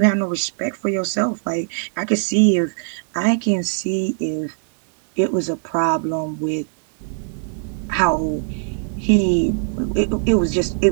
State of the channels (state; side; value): silent; left; 65 dB below the other